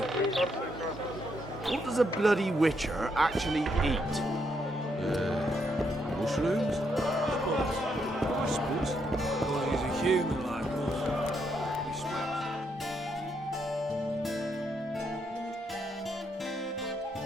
What does a bloody witcher actually eat? Mushrooms? I suppose. Well, he's a human like us. He smells.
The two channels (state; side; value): normal; both; correlation 0.77